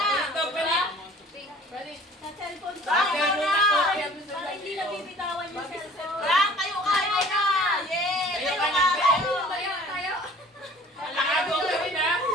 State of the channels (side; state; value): both; normal; correlation 0.50